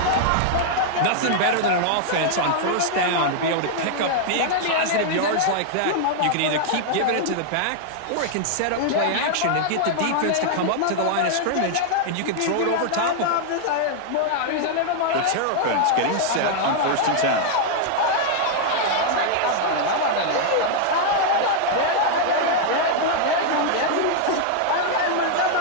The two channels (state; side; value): different; both; correlation -0.01